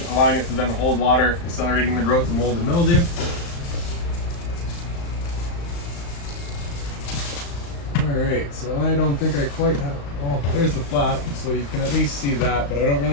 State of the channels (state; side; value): late; right; 35 ms